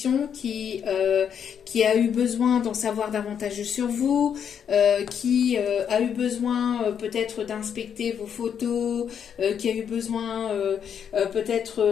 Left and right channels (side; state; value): right; quieter; 8.0 dB